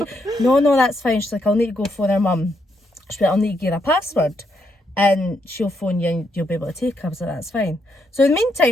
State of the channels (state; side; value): normal; both; correlation 0.77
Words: no, that's fine. She's like, I'll need to go phone her mum. She's like, I'll need to give her a password and she'll phone you and you'll be able to take her. I was like, that's fine. So in the